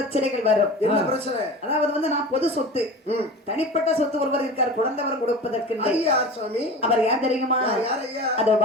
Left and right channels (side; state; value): both; normal; correlation 0.34